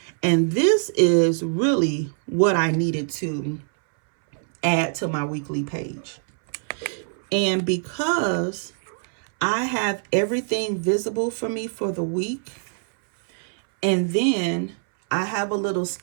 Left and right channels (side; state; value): left; silent; 63 dB below the other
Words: And this is really what I needed to add to my weekly page. And because I have everything visible for me for the week, and then I have a little